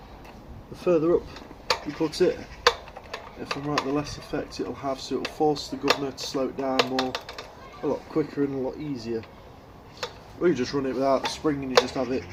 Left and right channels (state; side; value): identical; both; correlation 1.00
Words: the further up you put it, if I'm right, the less effect it'll have, so it'll force the governor to slow it down more, a lot quicker and a lot easier. Or you just run it without the spring and you just have it